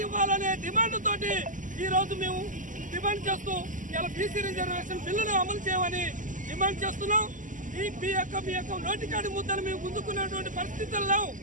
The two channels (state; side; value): late; left; 0.38 ms